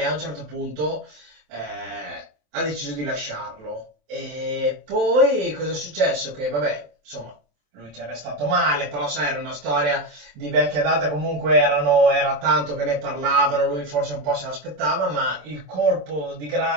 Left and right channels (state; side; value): late; left; 27 ms